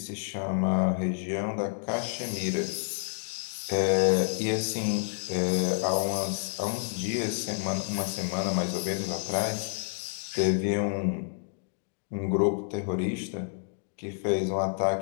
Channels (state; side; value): silent; right; digital silence